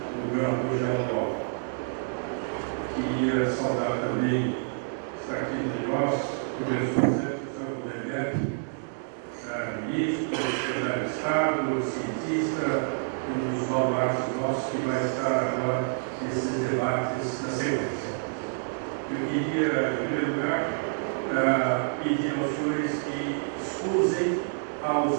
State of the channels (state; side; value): silent; left; 59 dB below the other